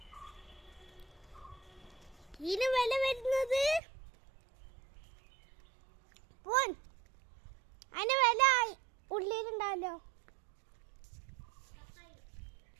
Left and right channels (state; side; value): drops out; left; at 3.8 s